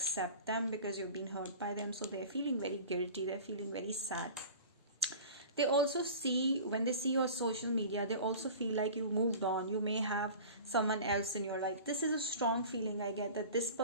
them because you've been hurt by them. So they're feeling very guilty, they're feeling very sad. They also see, when they see your social media, they also feel like you moved on. You may have someone else in your life. This is a strong feeling I get, that this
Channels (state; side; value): inverted; both; correlation -0.39